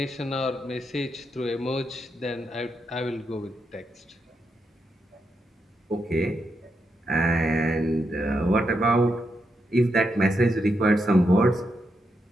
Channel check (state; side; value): normal; both; correlation 0.82